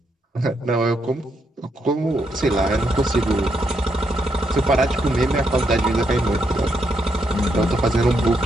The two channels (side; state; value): both; normal; correlation 0.78